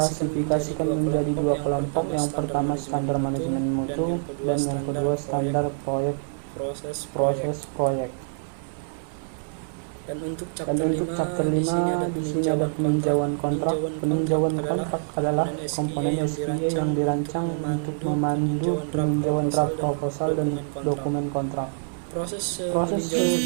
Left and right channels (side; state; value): left; silent; digital silence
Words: menjadi dua kelompok. Yang pertama standar manajemen mutu dan yang kedua standar proyek proses proyek. Dan untuk chapter 5 di sini ada peninjauan kontrak. Peninjauan kontrak adalah komponen SQA yang dirancang untuk memandu peninjauan draft proposal dan dokumen kontrak. Proses